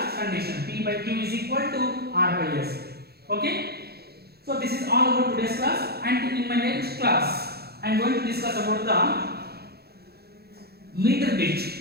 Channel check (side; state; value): left; late; 0.46 ms